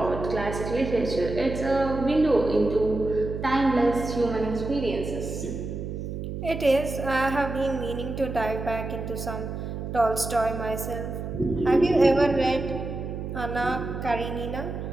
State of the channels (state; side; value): noise; right; hum, 6 dB below the sound